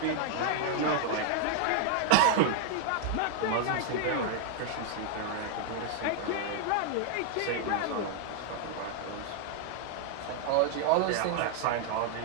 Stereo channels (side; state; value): both; different; correlation 0.00